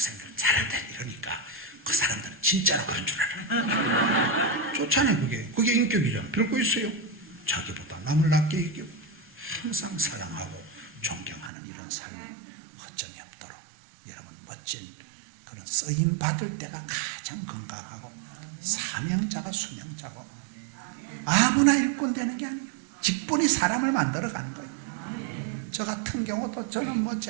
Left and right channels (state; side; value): drops out; left; at 11.5 s